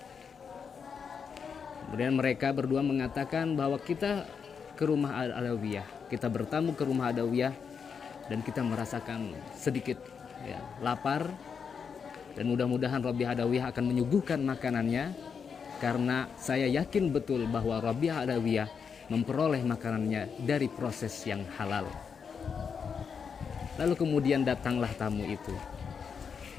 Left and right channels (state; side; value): quieter; right; 6.3 dB